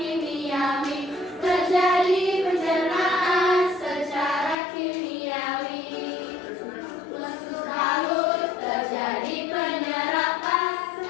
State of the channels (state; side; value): drops out; right; at 4.5 s